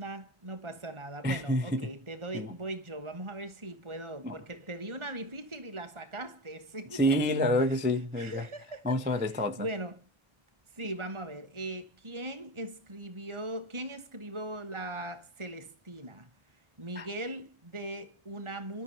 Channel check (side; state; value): left; late; 1.4 ms